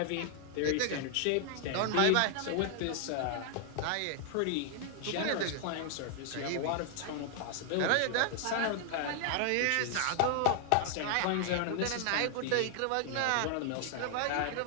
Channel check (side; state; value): both; different; correlation 0.00